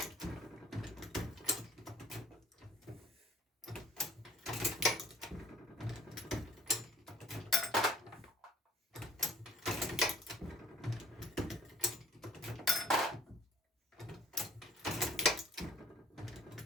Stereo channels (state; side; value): normal; both; correlation 0.54